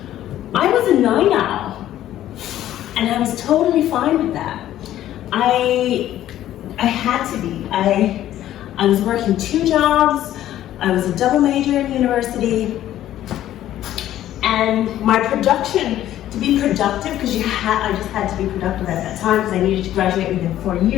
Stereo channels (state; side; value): quieter; right; 12.7 dB